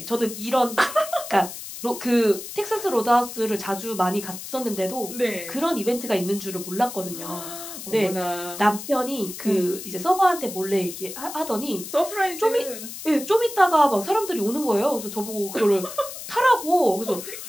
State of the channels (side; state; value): left; noise; hiss, 10 dB below the sound